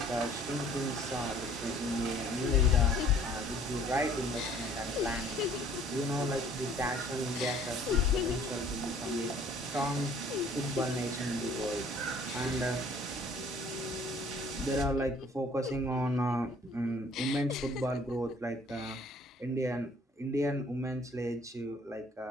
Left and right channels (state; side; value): normal; both; correlation 0.56